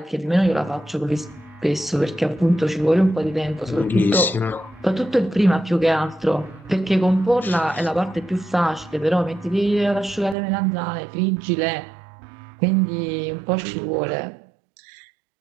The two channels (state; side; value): drops out; left; at 10.4 s